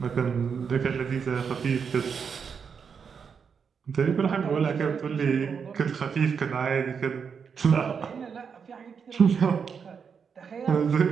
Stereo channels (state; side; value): quieter; left; 6.4 dB